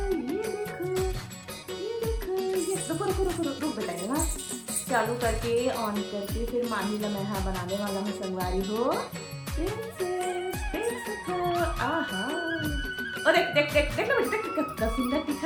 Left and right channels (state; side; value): identical; both; correlation 1.00